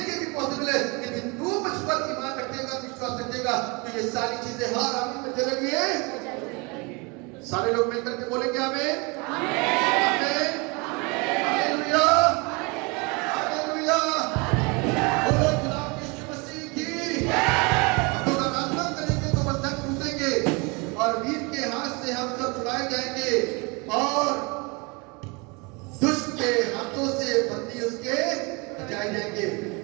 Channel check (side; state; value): left; quieter; 28.6 dB